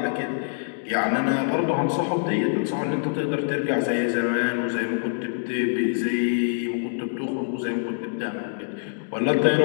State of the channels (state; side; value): silent; right; digital silence